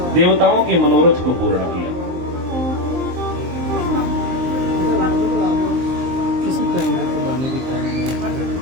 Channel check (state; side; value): late; left; 23 ms